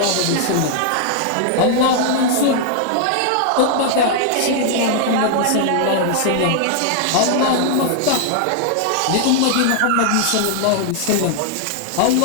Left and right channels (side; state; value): both; different; correlation 0.00